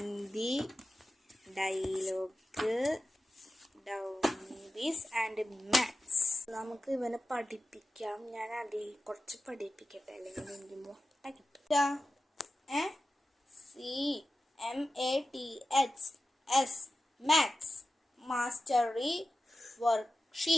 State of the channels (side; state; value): both; normal; correlation 0.93